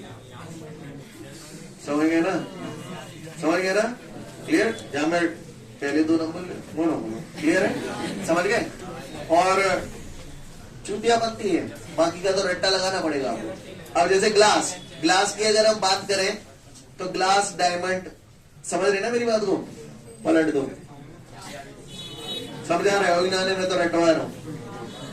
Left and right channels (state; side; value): identical; both; correlation 1.00